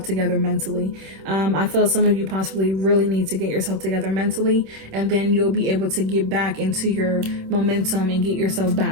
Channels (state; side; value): late; left; 26 ms